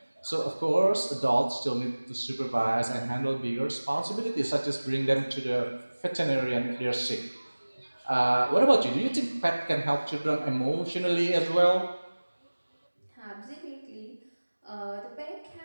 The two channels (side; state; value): both; inverted; correlation -1.00